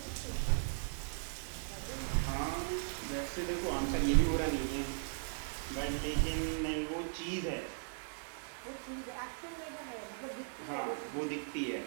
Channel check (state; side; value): silent; left; digital silence